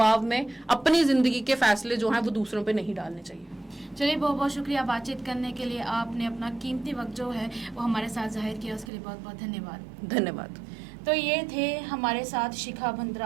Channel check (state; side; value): drops out; left; at 8.9 s